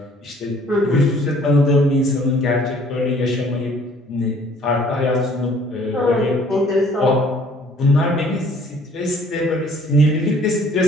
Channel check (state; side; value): normal; both; correlation 0.57